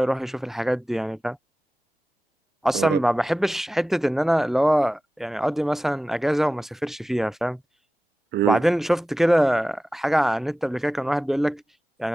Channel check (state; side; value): normal; both; correlation 0.95